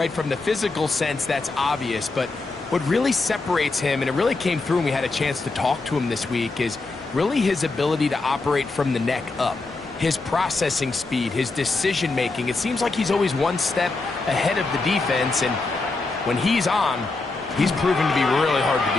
From the physical sense, that's obvious. But what really separates him, and it really came through when we had a chance to talk to him this week, is really his ability to operate from the neck up. His processing speed, his decision-making. It seems like he's always one step ahead of the defense, and when he's on, he's proven to be really hard to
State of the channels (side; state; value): right; quieter; 3.5 dB